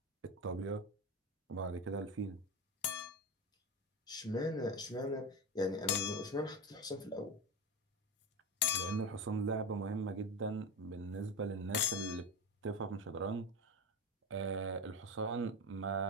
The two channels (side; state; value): both; normal; correlation 0.20